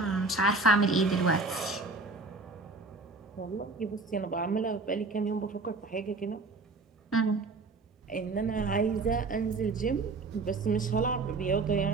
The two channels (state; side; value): quieter; left; 3.6 dB